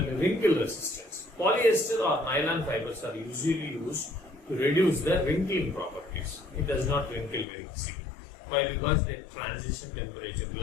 wrinkle resistance. Polyester or nylon fibers are usually used to reduce the wrinkling properties. It does not wrinkle very easily. Why? Because the transition temperature,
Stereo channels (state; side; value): drops out; right; at 7.5 s